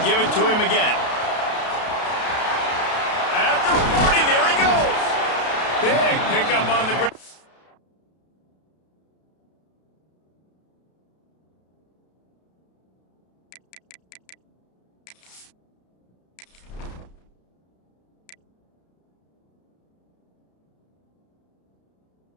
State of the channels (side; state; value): right; late; 32 ms